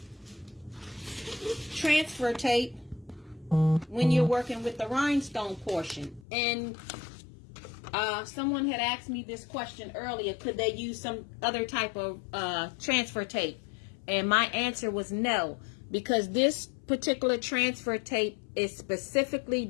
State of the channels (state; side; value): drops out; right; at 6.2 s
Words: transfer tape when you're working with the rhinestone portion. And someone had asked me this question earlier: could they use some other type of transfer tape? And my answer was no, because this particular transfer tape is specifically